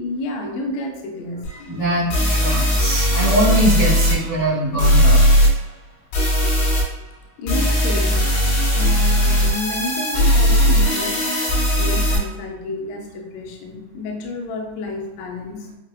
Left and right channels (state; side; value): late; right; 19 ms